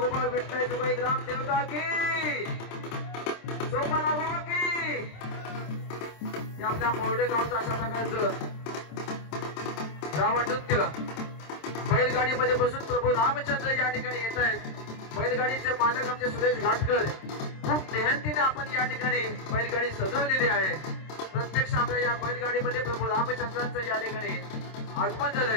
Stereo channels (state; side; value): late; right; 26 ms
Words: विठ्ठल तुकाई ग्राम देवता की सोमवार गोपाळ की. आपल्या मोरडे गावचं अशा प्रकारचं रावण नृत्य बैलगाडीमध्ये बसून प्रभू रामचंद्र या ठिकाणी येत आहेत. बैलगाडीचे मालक आमचे सुरेश घाटकर. खूप मेहनतीने आपण या ठिकाणी बैलगाडी सजवलेली आहे. प्रत्यक्ष आपल्या या बैलगाडीमध्ये प्रभू रामचंद्रांचं या ठिकाणी आगमन